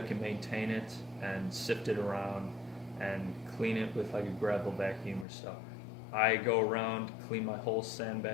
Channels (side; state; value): right; drops out; at 5.2 s